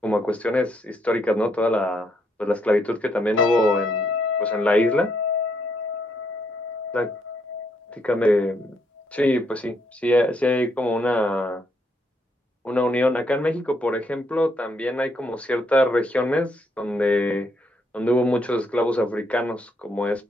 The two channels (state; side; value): normal; both; correlation 0.74